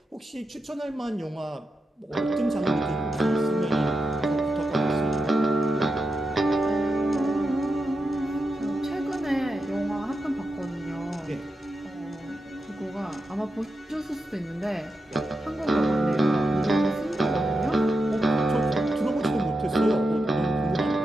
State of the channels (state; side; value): normal; both; correlation 0.88